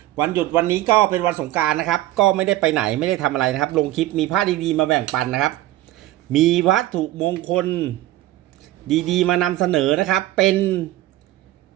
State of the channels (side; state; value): left; quieter; 15.5 dB